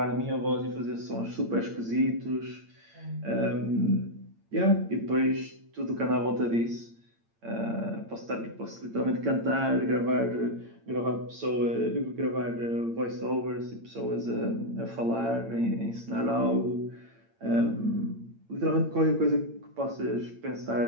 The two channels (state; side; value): late; left; 8.8 ms